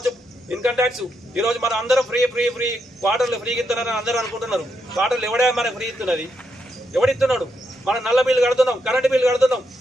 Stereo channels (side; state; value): both; normal; correlation 0.81